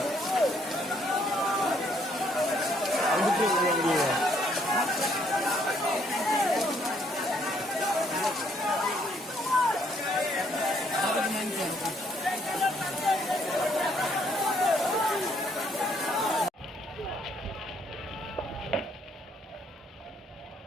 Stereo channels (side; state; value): both; normal; correlation 0.68